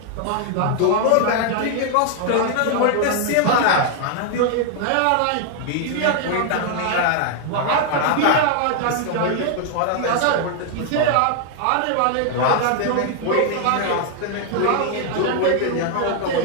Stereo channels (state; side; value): different; both; correlation 0.00